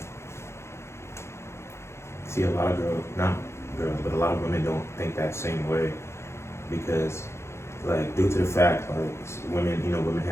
See, a lot of not girls, but a lot of women don't think that same way because, like, due to the fact, like, women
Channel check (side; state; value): right; late; 0.13 ms